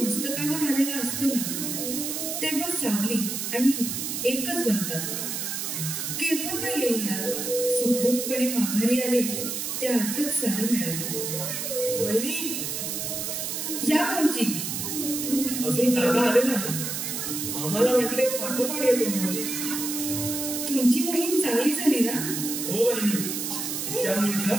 मस्तकावर आलेला असतो ना तेव्हा सावली आणि एकच बनतात. केव्हा काय येईना सुखरूपपणे माघारी आले त्या अर्थच सारं मिळालं. वहिनी, या भाऊजी. अजून दादा आले नाही. आम्हाला म्हटले पाठोपाठ येतो म्हणून. तुमची मोहीम चांगली झाली ना? हो वहिनी, त्या मुलीला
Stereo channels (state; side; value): noise; right; hiss, 3 dB below the sound